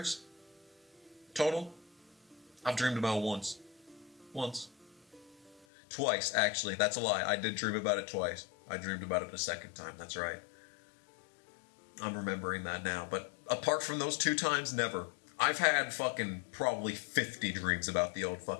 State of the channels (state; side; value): drops out; right; at 5.7 s